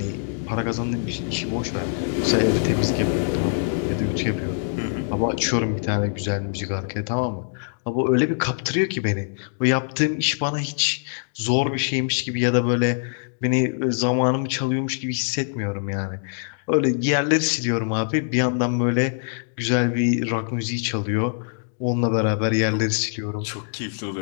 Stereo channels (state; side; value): silent; right; digital silence